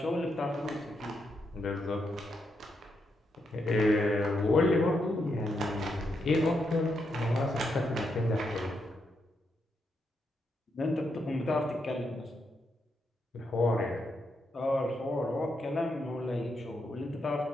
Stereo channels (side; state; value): both; normal; correlation 0.81